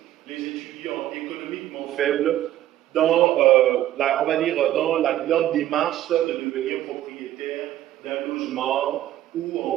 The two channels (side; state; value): left; quieter; 13.2 dB